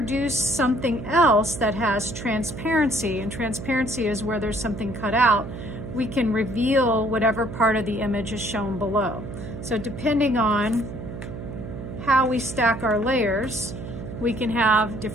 something else that has transparency, and transparency is where there's something cut out, we can reveal whatever part of the image is shown below. So depending on how we stack our layers, we can have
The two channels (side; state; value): right; noise; hum, 9 dB below the sound